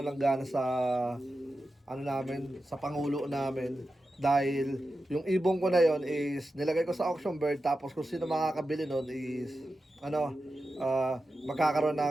ng gana sa sa pangulo namin. Dahil yung ibong ko na yon is nilagay ko sa auction bird, tapos kung sino makakabili nun is magkakaroon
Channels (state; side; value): normal; both; correlation 0.91